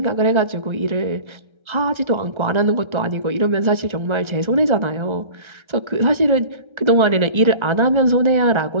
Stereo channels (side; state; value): left; late; 1.3 ms